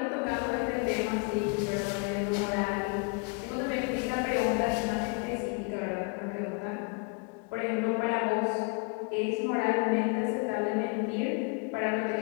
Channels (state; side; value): quieter; right; 34.1 dB